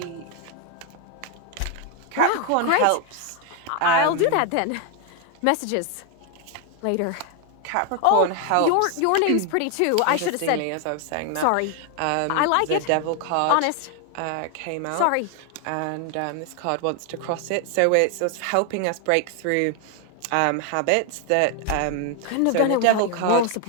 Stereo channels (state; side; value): different; both; correlation 0.01